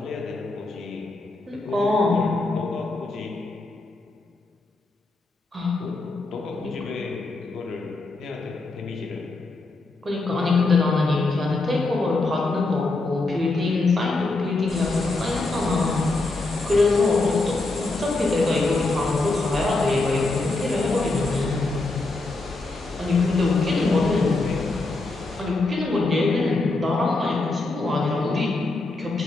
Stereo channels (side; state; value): right; quieter; 3.2 dB